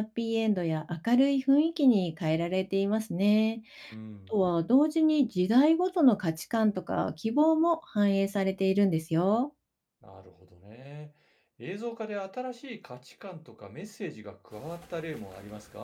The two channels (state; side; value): identical; both; correlation 1.00